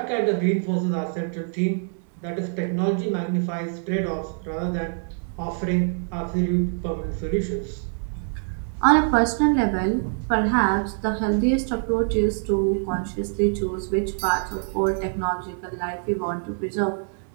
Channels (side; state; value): left; silent; 60 dB below the other